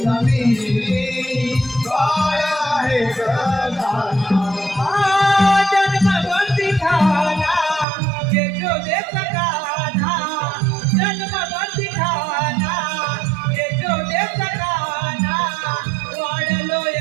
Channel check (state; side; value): drops out; left; at 7.9 s